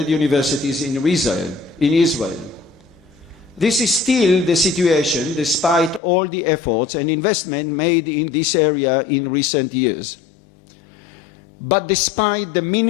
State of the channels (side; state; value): right; drops out; at 6.0 s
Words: universities in Israel. This is still the situation despite all the efforts and investment made in this area in recent years. But despite the